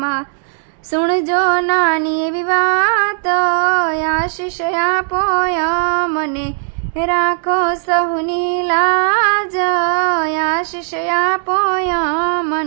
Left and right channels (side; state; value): left; silent; digital silence